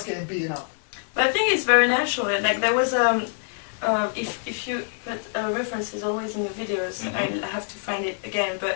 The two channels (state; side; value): silent; right; digital silence